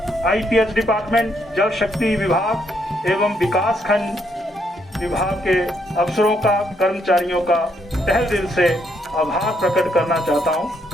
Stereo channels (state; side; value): normal; both; correlation 0.74